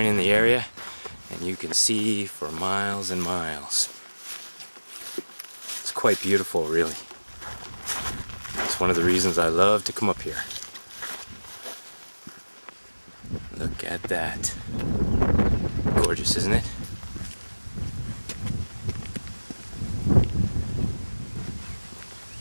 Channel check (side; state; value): both; inverted; correlation -1.00